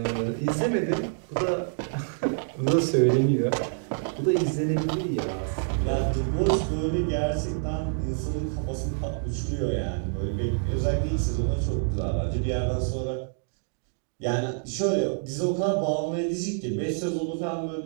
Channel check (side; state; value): left; silent; digital silence